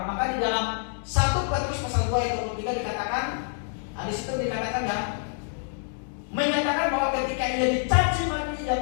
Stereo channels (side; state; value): right; silent; 60 dB below the other